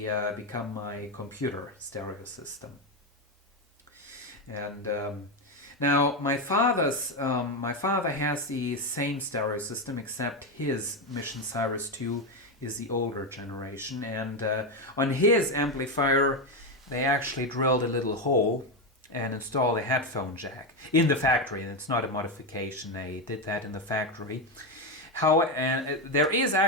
become my computer stereo system. And now my father has the same stereo system, except his Mission Cyrus 2 is the older generation, and on his amplifier they actually drilled a little hole and installed a headphone jack in the factory, and it's not a modification. They did that in the factory. And there is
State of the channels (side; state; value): both; normal; correlation 0.10